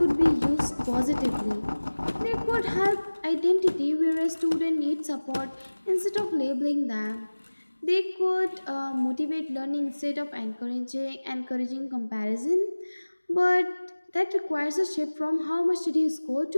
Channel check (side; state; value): both; inverted; correlation -1.00